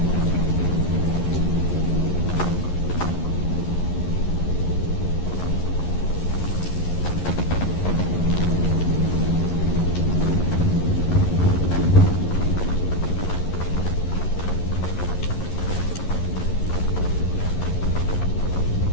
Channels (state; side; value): late; right; 11 ms